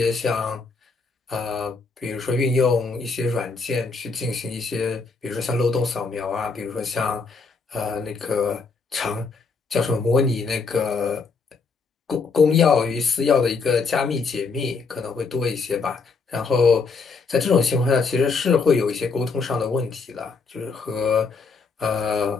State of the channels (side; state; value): right; quieter; 4.6 dB